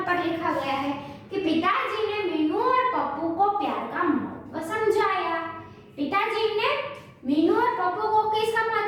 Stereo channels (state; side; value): identical; both; correlation 1.00